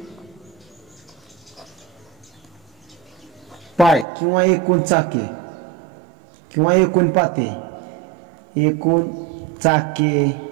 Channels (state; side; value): drops out; left; at 4.0 s